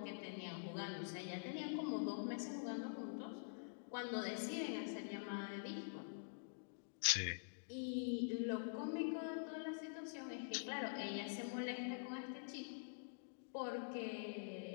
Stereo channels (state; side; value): silent; right; digital silence